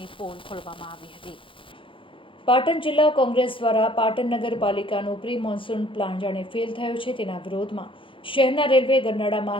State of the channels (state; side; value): late; right; 0.25 ms